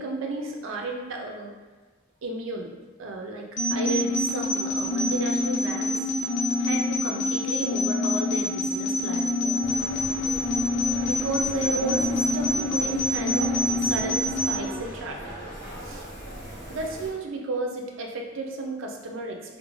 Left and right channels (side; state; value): both; normal; correlation 0.46